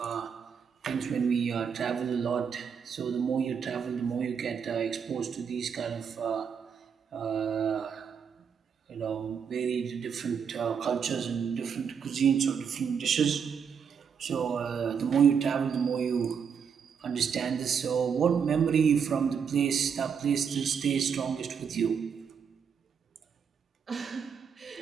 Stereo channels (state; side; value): quieter; left; 6.9 dB